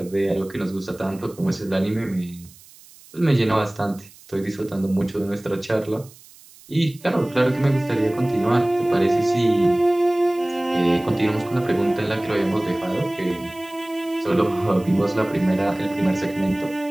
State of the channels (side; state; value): right; noise; hiss, 23 dB below the sound